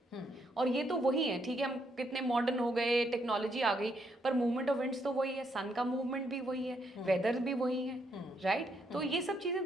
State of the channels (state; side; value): normal; both; correlation 0.75